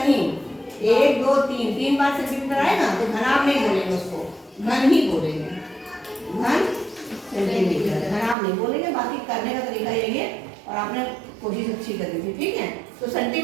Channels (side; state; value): left; drops out; at 8.3 s